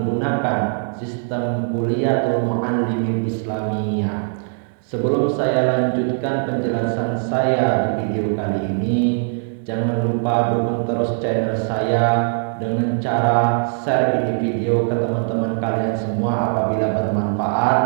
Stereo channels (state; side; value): silent; left; digital silence